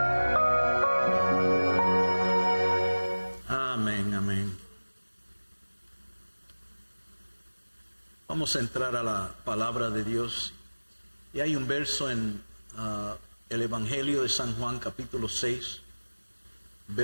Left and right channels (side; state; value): both; inverted; correlation -1.00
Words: Amén, amén. Vamos a entrar a la palabra de Dios. Y hay un verso en el Evangelio de San Juan, capítulo 6,